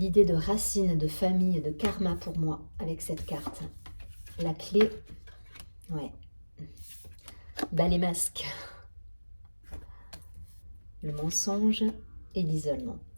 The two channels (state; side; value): inverted; both; correlation -1.00